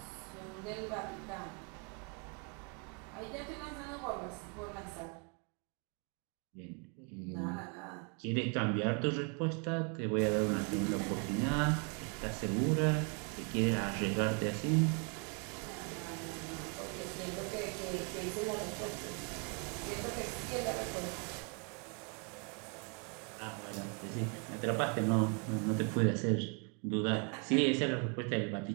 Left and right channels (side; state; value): left; quieter; 36.7 dB